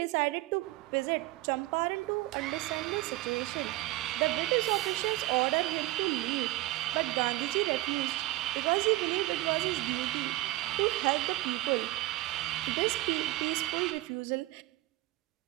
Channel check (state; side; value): quieter; left; 18.2 dB